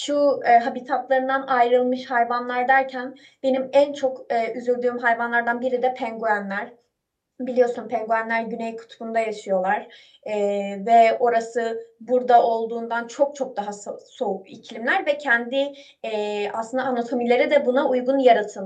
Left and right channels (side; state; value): both; identical; correlation 1.00